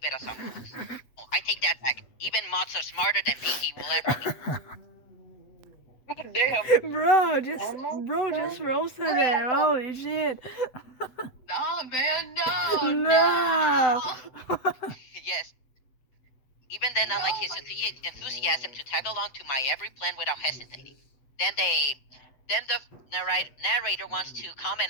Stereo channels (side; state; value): right; late; 7.8 ms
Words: as someone. Oh, I take that back. Even mods are smarter than Pinky will ever be. Damn. Bro just roasted it. Holy shit. Nah, man, no. No. Yes. Even then, I like his enthusiasm to tag along to my every plan without hesitating. Then the narrator wants to